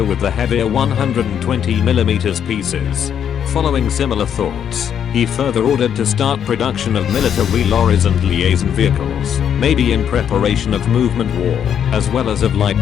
with the heavier 120mm pieces. Following similar thoughts, he further ordered to start production of military lorries and liaison vehicles, maybe in preparation of movement war, as well as of light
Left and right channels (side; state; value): right; quieter; 8.7 dB